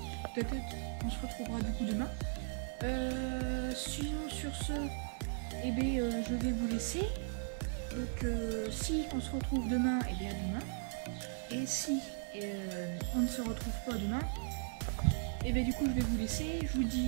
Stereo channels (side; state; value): left; silent; digital silence